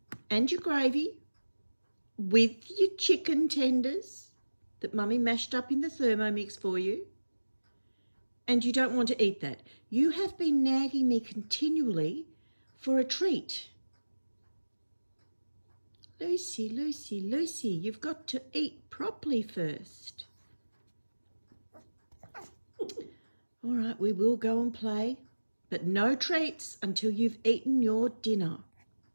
and your gravy with your chicken tenders that Mummy mashed up in the Thermomix for you? And you don't want to eat that. You have been nagging me continually for a treat. Lucy, you've got to eat properly first. All right, we will go and play, but no treats until you've eaten your dinner.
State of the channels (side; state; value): both; inverted; correlation -1.00